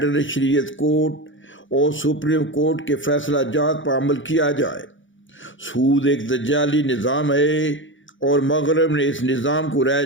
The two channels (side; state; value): right; late; 0.56 ms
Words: شریعت کورٹ اور سپریم کورٹ کے فیصلہ جات پر عمل کیا جائے۔ سود ایک دجالی نظام ہے اور مغرب نے اس نظام کو